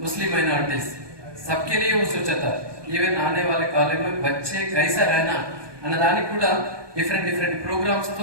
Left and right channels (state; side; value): late; left; 1.2 ms